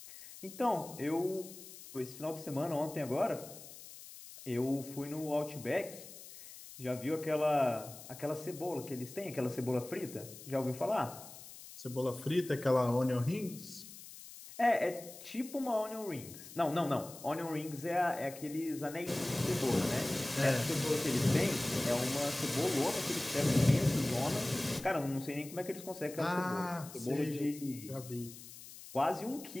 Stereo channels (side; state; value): left; noise; hiss, 15 dB below the sound